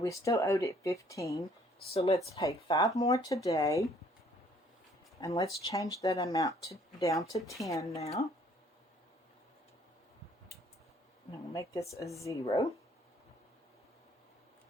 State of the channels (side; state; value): both; normal; correlation 0.61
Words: still owed it 15. So let's pay 5 more today. And let's change that amount down to 10 now. And we'll make this a 0.